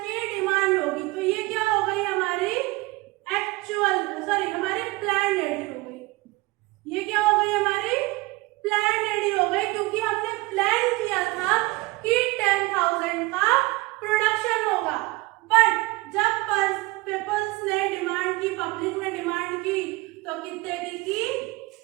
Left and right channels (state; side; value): quieter; left; 22.1 dB